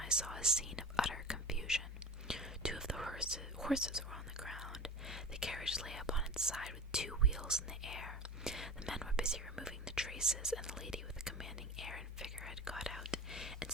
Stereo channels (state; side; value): normal; both; correlation 0.33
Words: saw a scene of utter confusion. 2 of the horses were on the ground. The carriage lay upon its side with 2 wheels in the air. The men were busy removing the traces, and the lady with a commanding air and figure had got out, and